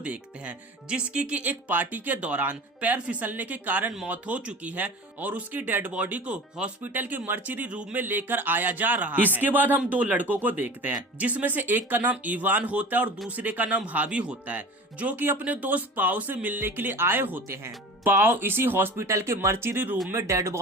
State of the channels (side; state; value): both; normal; correlation 0.37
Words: हैं, जिसकी कि एक पार्टी के दौरान पैर फिसलने के कारण मौत हो चुकी है और उसकी डेड बॉडी को हॉस्पिटल के मर्चरी रूम में लेकर आया जा रहा है। इसके बाद हम 2 लड़कों को देखते हैं, जिसमें से एक का नाम इवान होता है और दूसरे का नाम हावी होता है, जो कि अपने दोस्त पाओ से मिलने के लिए आए होते हैं। पाओ इसी हॉस्पिटल के मर्चरी रूम में डेड